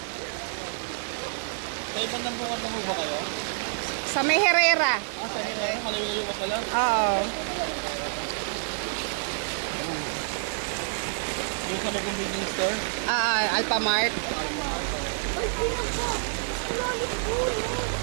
Sa ibang nambungan na ba kayo? Sa may Herrera. Ah, sa Herrera? Malayo-layo ka pala? Oo. Yung sa may convenience store? Alphamart.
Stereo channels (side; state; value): left; silent; digital silence